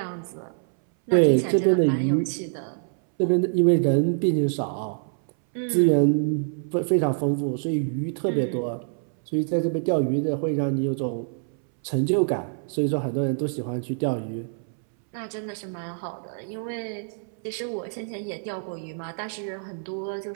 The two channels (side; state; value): left; silent; 61 dB below the other